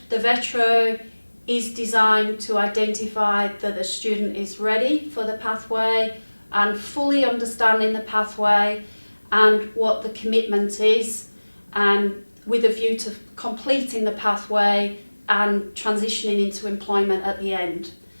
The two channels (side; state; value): both; inverted; correlation -1.00